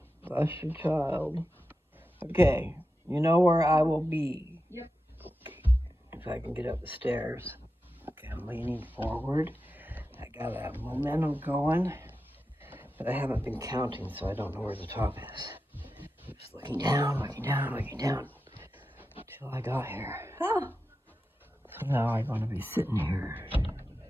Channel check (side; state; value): both; normal; correlation 0.91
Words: Bless you, child. Okay. You know where I will be. Yep. If I can get up the stairs. Okay, I'm leaning forward. I got a momentum going, but I haven't been counting, so I don't know where the top is. Just looking down, looking down, looking down, until I got here. Ah. So now I'm going to be sitting here